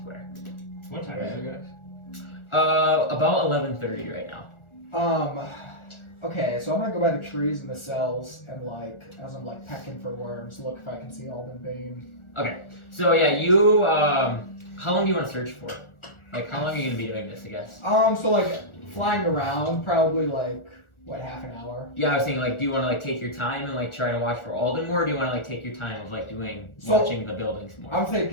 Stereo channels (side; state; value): right; late; 1.4 ms